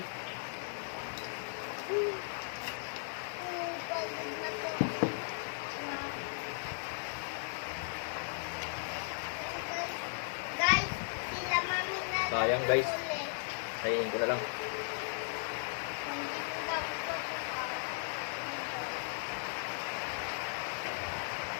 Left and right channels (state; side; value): silent; right; 53 dB below the other